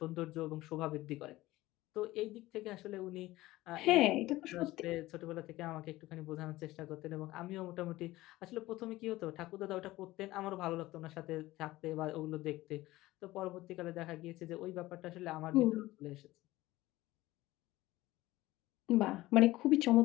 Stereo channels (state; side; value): quieter; right; 17.7 dB